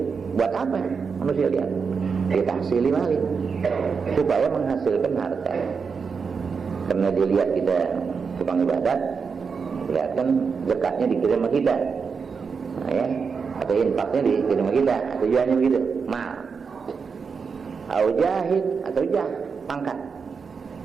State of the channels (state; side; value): quieter; left; 5.6 dB